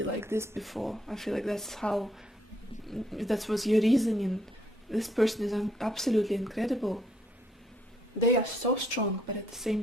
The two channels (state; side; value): normal; both; correlation 0.70